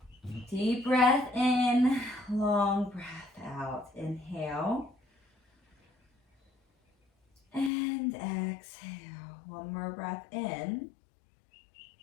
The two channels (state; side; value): drops out; right; at 7.7 s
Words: Deep breath in, long breath out. Inhale. And exhale. One more breath in.